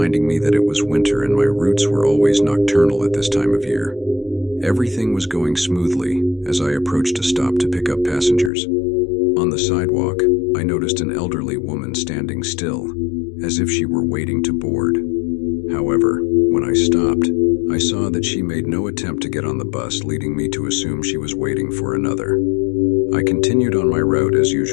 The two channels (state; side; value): drops out; right; at 8.5 s